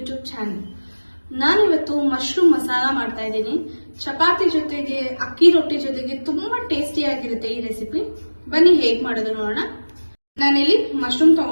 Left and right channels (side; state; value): both; inverted; correlation -1.00